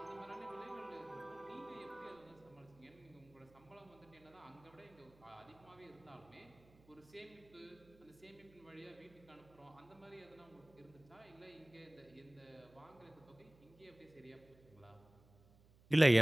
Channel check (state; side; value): noise; right; hum, 26 dB below the sound